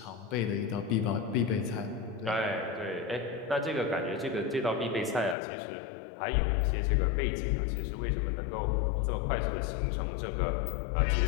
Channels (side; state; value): right; drops out; at 5.4 s